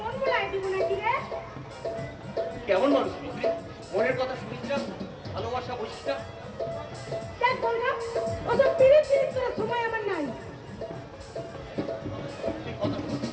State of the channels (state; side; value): identical; both; correlation 1.00